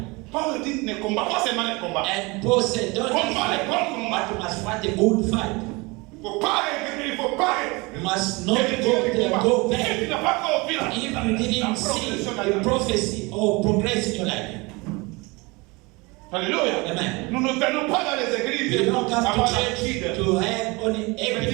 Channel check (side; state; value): left; quieter; 25.6 dB